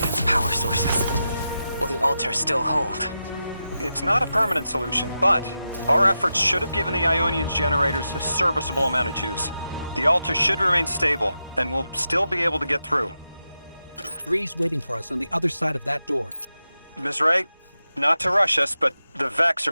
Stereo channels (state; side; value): inverted; both; correlation -0.90